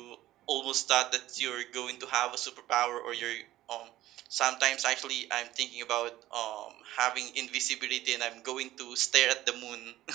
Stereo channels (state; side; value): quieter; left; 15.0 dB